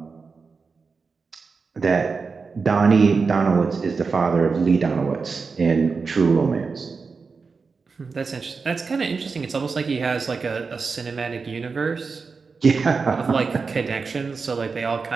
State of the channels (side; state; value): left; quieter; 4.8 dB